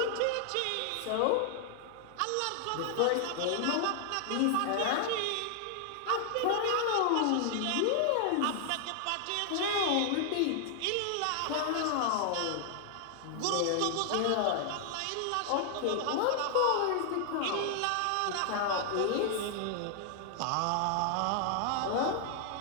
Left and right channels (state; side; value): different; both; correlation 0.00